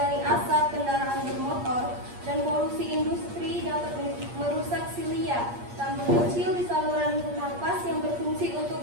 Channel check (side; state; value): left; late; 8.5 ms